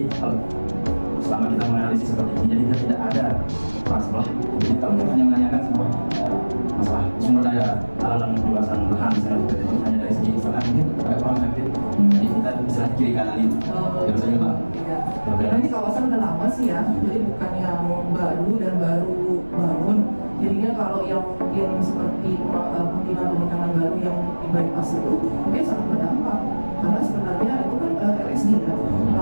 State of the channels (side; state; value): both; inverted; correlation -1.00